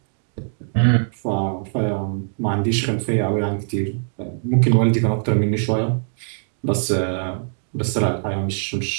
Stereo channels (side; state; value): left; silent; digital silence